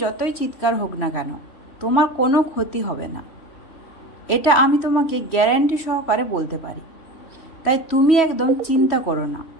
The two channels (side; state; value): right; late; 3.1 ms